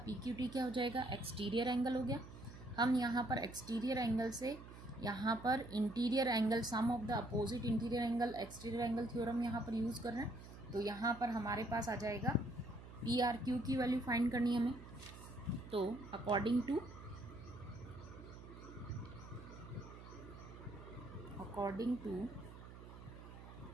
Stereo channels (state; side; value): noise; right; hum, 15 dB below the sound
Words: PQT क्या हो जाएगा, एक्सटीरियर एंगल हो गया. हम यहाँ पर एक्सटीरियर एंगल से यहाँ पर interior angle, sum of the opposite interior angle exterior angle theorem यहाँ पर यूज़ कर रहे हैं. तो यहाँ पर हमारे पास आ जाएगा PRQ की वैल्यू फाइंड करनी है हमें. तो according to